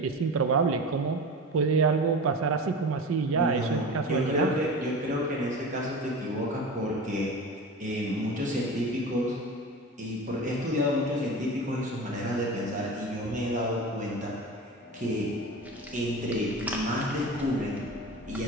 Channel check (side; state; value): both; normal; correlation 0.31